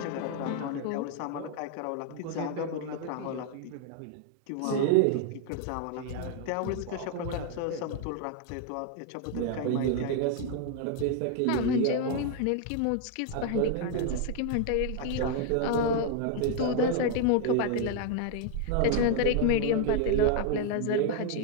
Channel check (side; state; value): both; different; correlation 0.00